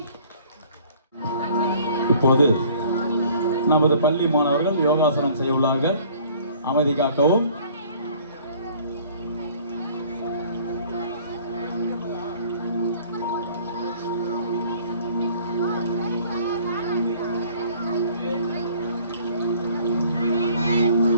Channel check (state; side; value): inverted; both; correlation -0.54